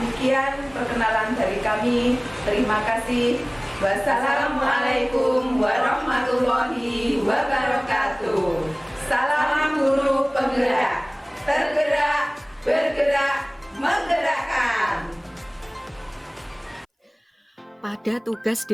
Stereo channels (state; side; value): identical; both; correlation 1.00